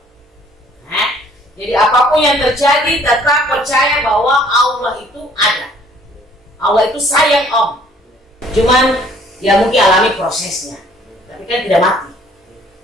Jadi apapun yang terjadi tetap percaya bahwa Allah itu ada. Allah itu sayang Om. Cuman ya mungkin alami prosesnya, tapi kan tidak mati.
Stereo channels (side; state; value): both; normal; correlation 0.59